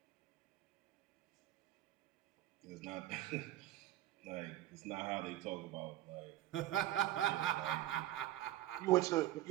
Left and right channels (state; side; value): quieter; left; 14.3 dB